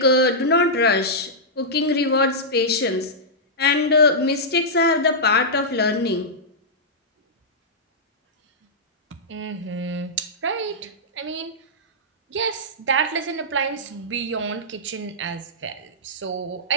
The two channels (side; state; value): both; normal; correlation -0.12